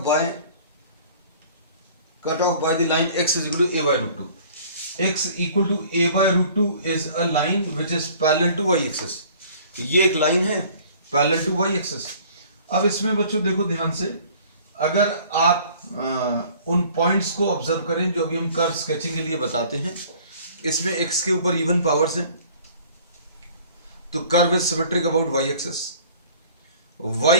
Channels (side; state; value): both; inverted; correlation -0.52